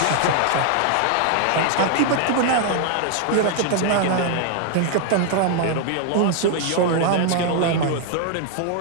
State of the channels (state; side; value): different; both; correlation 0.00